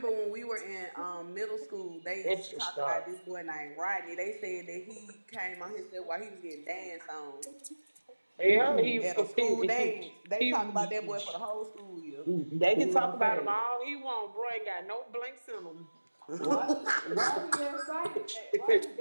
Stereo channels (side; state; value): both; inverted; correlation -1.00